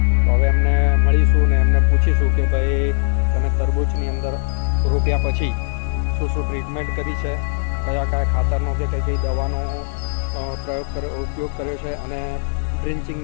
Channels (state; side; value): silent; right; digital silence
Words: તો હવે એમને મળીશું ને એમને પૂછીશું કે ભાઈ તમે તરબૂચની અંદર રોપ્યા પછી શું શું ટ્રીટમેન્ટ કરી છે, કયા કયા ખાતરનો કે કઈ કઈ દવાનો ઉપયોગ કર્યો છે, અને